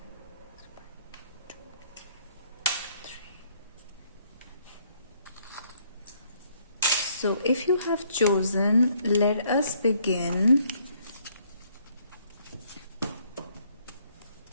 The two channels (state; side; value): inverted; both; correlation -0.66